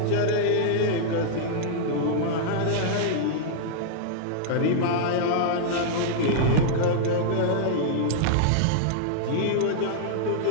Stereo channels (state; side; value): different; both; correlation -0.01